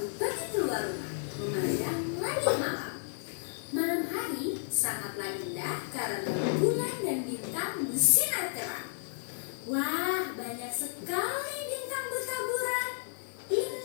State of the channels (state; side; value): silent; right; digital silence